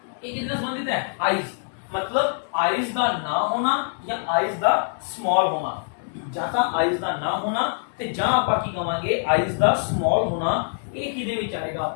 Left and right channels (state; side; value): silent; right; digital silence